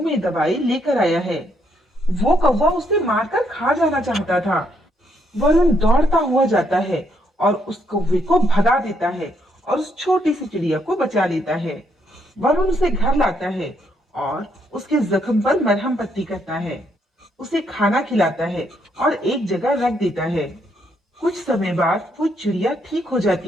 में दबाए लेकर आया है। वो कौवा उसे मारकर खा जाना चाहता था। वरुण दौड़ता हुआ जाता है और उस कौवे को भगा देता है और उस छोटी सी चिड़िया को बचा लेता है। वरुण उसे घर लाता है और उसके जख्म पर मरहम पट्टी करता है, उसे खाना खिलाता है और एक जगह रख देता है। कुछ समय बाद वो चिड़िया ठीक हो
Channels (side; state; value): both; normal; correlation 0.74